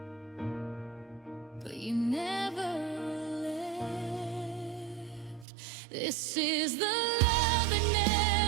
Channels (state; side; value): drops out; left; at 5.5 s